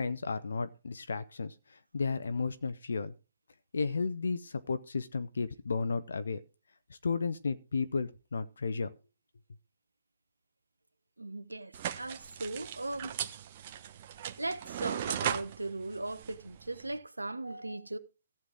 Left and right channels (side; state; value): both; inverted; correlation -0.82